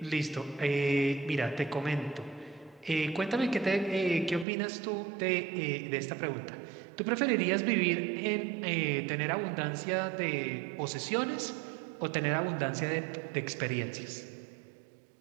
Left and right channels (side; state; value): left; drops out; at 4.5 s